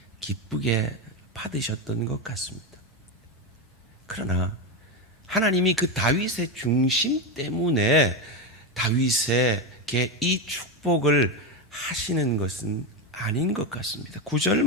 기쁘게 받으셨던 것 같습니다. 그러나 하나님이 그 다윗의 중심 때문에 다윗에게 이 축복을 하시는 것은 아닌 것 같습니다. 9절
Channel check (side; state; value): both; normal; correlation 0.12